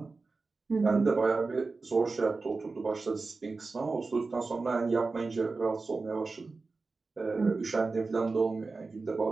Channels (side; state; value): left; quieter; 3.9 dB